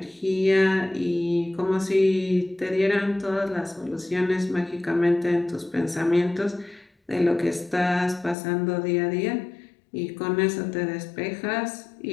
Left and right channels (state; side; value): drops out; right; at 8.3 s